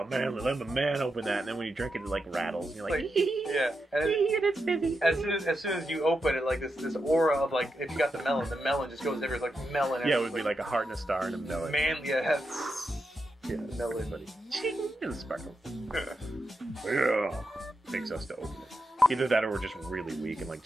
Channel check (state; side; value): normal; both; correlation 0.87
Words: man, let the man open that, and then when you drink it, it like rattles. And you're like, yeah, and it's busy. As soon as you open it, like this aura of like if you got the melon just goes everywhere, like melon. Yeah, it would be like a heart and a star and a melon. Man, yeah. Yeah, melon. buddy. And sparkles. Yeah, makes us to open it. Either that or we're just really weak and like